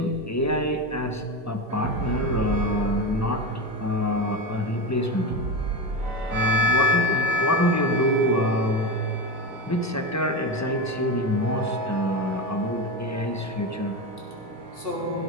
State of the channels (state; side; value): normal; both; correlation 0.19